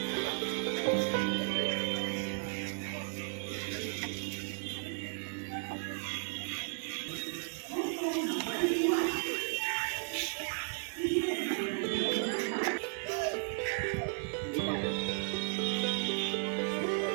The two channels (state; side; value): silent; left; 55 dB below the other